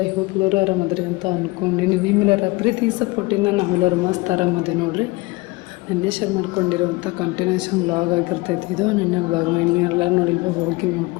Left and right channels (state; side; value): quieter; right; 23.6 dB